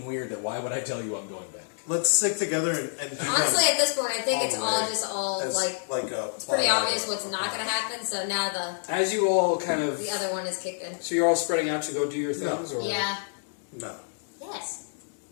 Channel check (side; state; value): right; silent; digital silence